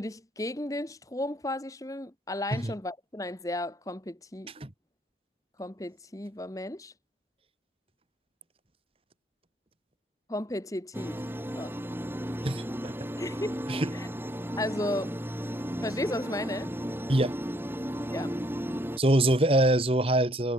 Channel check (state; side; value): normal; both; correlation 0.67